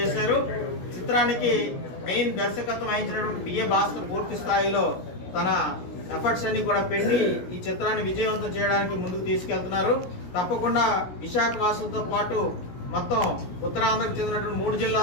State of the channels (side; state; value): right; late; 17 ms